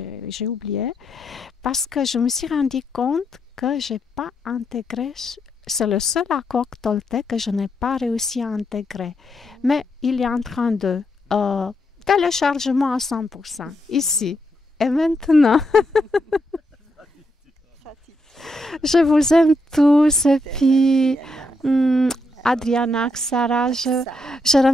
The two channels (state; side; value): normal; both; correlation 0.80